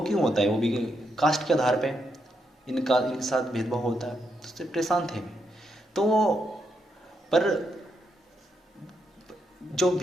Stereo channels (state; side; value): normal; both; correlation 0.80